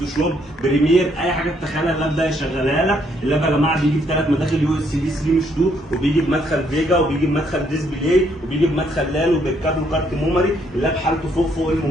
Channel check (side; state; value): both; normal; correlation 0.71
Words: بريمير، اي حاجة تتخيلها اللاب ده يشغلها لك. اللاب يا جماعه بيجي بثلاث مداخل يو اس بي 3 مش 2، وبيجي بمدخل فيجا، وبيجي بمدخل ديسبلاي، وبيجي بمدخل لال، وبالكابل كارت ميموري. اللاب حالته فوق